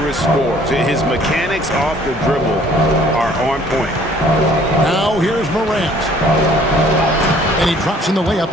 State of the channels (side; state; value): both; normal; correlation 0.57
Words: scorers. His mechanics off the dribble are on point. Now here's Morant. And he drops in the layup